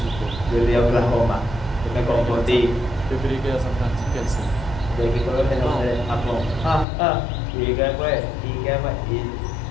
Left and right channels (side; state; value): right; drops out; at 6.9 s